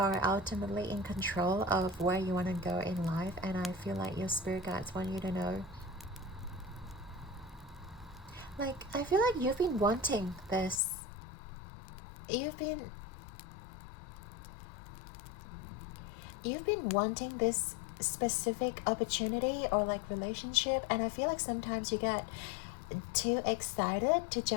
ultimately in control of where you want to go in life, and I feel like your spirit guides want you to know. Like, I feel like you've been wanting this. You've been wanting this specific opportunity or like relationship, and I feel like sometimes you get too excited to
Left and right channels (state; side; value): drops out; right; at 10.8 s